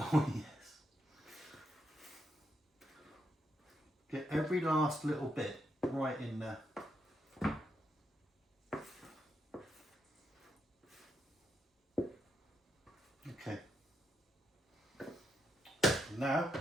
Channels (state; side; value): normal; both; correlation 0.80